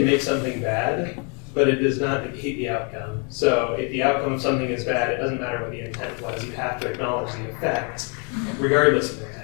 make something bad, but it does not negate the outcome. So if the outcome of something is bad, it doesn't matter what the intent was. You have to acknowledge the effect, regardless of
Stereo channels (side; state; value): right; quieter; 35.8 dB